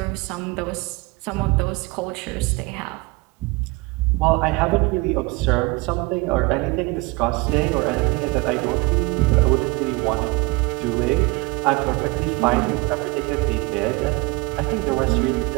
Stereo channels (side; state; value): left; quieter; 25.0 dB